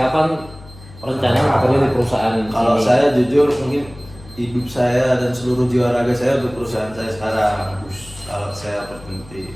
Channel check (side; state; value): left; noise; hum, 20 dB below the sound